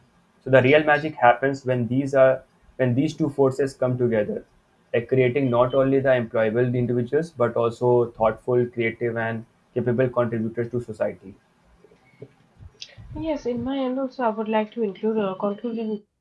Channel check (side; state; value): both; identical; correlation 1.00